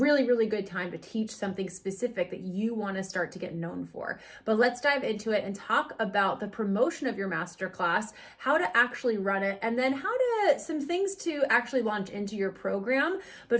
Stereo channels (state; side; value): identical; both; correlation 1.00